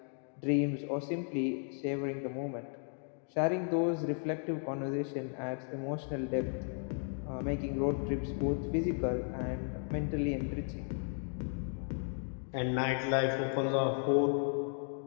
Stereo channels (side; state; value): right; silent; 54 dB below the other